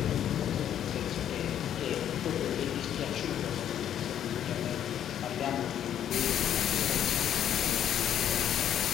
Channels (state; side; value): quieter; right; 10.2 dB